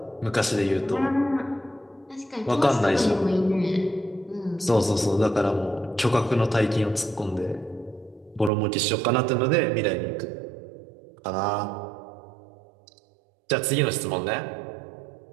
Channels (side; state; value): left; drops out; at 8.5 s